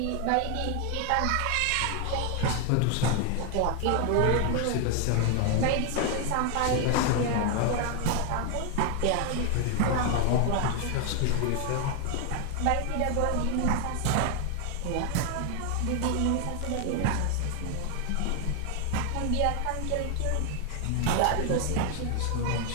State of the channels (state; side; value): different; both; correlation 0.00